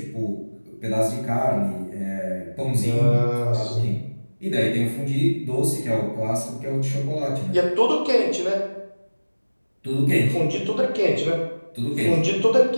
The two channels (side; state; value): both; inverted; correlation -1.00